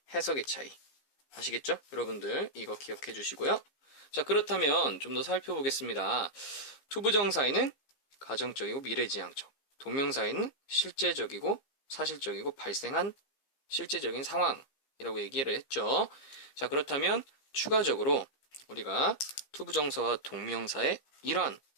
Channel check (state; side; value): late; right; 15 ms